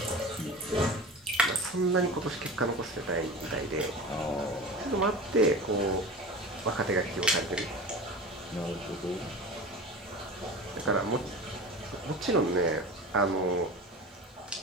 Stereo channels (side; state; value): both; normal; correlation 0.32